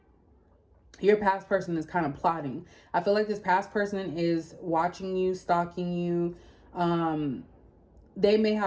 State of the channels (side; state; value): both; identical; correlation 1.00